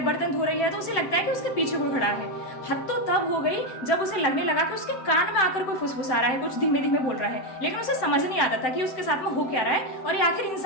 बर्तन धो रही है तो उसे लगता है कि उसके पीछे कोई खड़ा है। हद तो तब हो गई जब उसे लगने लगा कि उसके कान में आकर कोई फुसफुसा रहा है, कुछ धीमे धीमे बोल रहा है, लेकिन उसे समझ नहीं आता था कि उसके साथ में हो क्या रहा है और ये आखिर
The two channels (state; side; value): late; right; 7.8 ms